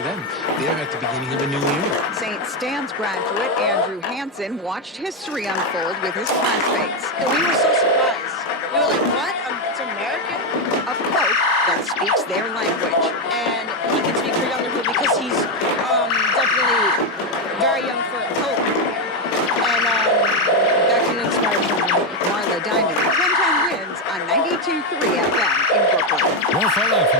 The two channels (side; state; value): both; normal; correlation 0.07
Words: them, they're at the beginning of a new era. St. Stan's graduate Andrew Hansen watched history unfold with his classmates. We were so surprised. We were like, what? It's American? A pope that speaks their language. And he can speak for younger people because he's definitely very young for a pope. And that can inspire someone. Marla Diamond, 1010 wins on 92.3 FM in Brooklyn. More fallout